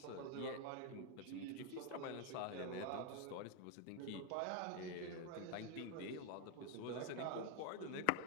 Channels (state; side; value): different; both; correlation 0.01